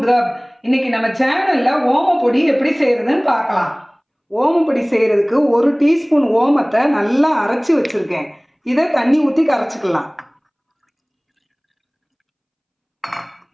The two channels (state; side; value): identical; both; correlation 1.00